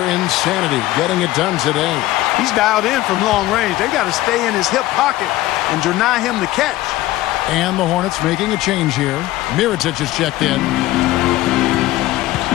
insanity, getting it done today. He's dialed in from long range. They got to stay in his hip pocket and deny him the catch. And the Hornets making a change here. Mirotic is checked in.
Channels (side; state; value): right; quieter; 16.4 dB